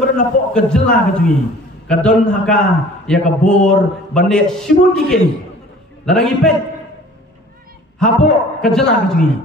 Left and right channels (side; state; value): both; normal; correlation 0.48